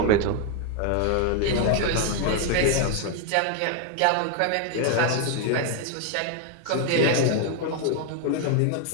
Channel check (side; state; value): both; different; correlation 0.01